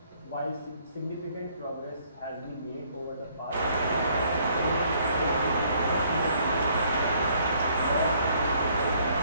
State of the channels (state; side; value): inverted; both; correlation -0.64